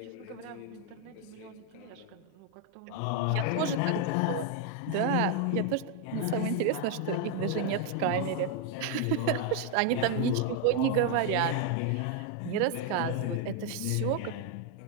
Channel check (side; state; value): both; different; correlation 0.01